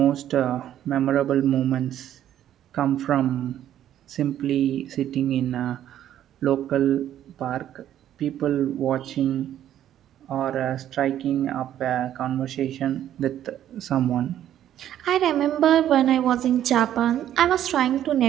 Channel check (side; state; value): left; quieter; 11.3 dB